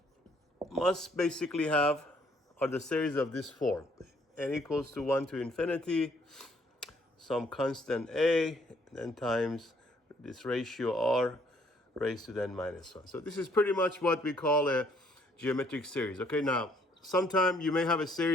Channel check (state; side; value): normal; both; correlation 0.65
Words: must basically have are the series of this form: n equals to 1 to infinity, some constant a, then times this ratio r raised to the n minus 1. So this is pretty much what we call a geometric series. Okay, now sometime you may have a